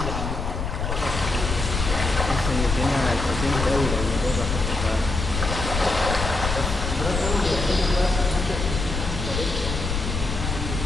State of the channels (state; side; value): noise; left; rumble, 3 dB below the sound